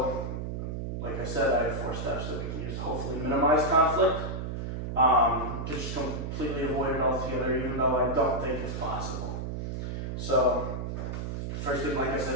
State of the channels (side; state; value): right; noise; hum, 4 dB below the sound